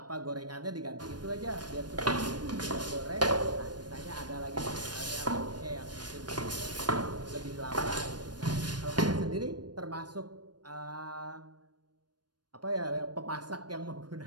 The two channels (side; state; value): left; late; 0.69 ms